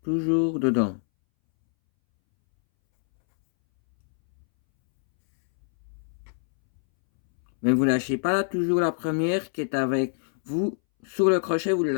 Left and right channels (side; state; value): right; silent; 62 dB below the other